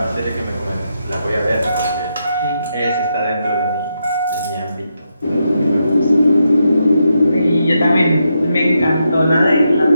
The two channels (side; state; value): both; inverted; correlation -0.83